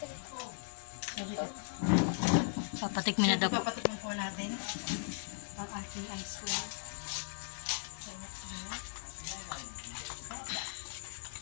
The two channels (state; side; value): silent; right; digital silence